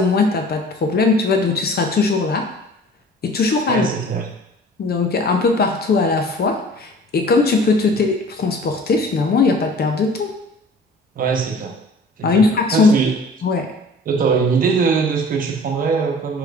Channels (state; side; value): normal; both; correlation 0.46